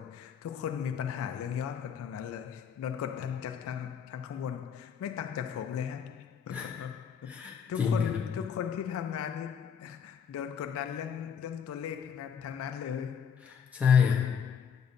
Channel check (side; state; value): right; quieter; 7.3 dB